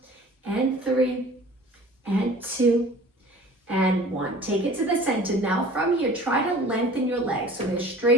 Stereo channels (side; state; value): both; normal; correlation 0.46